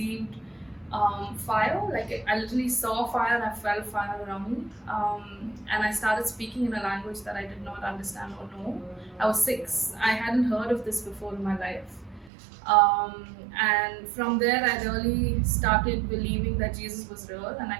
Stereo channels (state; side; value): drops out; left; at 12.3 s